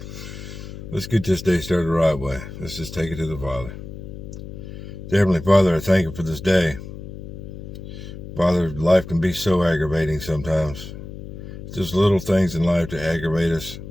Let's get this day started the right way. Let's just take it to the Father. Dear Heavenly Father, I thank you for this day. Father, life can be so aggravating sometimes. Just little things in life to aggravate us.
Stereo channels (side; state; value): left; noise; hum, 11 dB below the sound